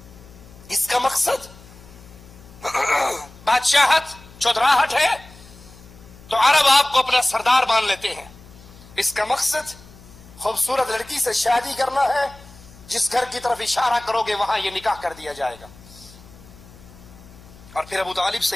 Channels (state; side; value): noise; left; hum, 21 dB below the sound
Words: اس کا مقصد بادشاہت، چودراہٹ ہے تو عرب آپ کو اپنا سردار مان لیتے ہیں. اس کا مقصد خوبصورت لڑکی سے شادی کرنا ہے، جس گھر کی طرف اشارہ کرو گے وہاں یہ نکاح کر دیا جائے گا. اور پھر ابو طالب